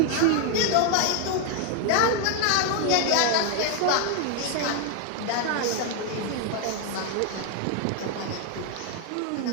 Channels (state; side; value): different; both; correlation 0.00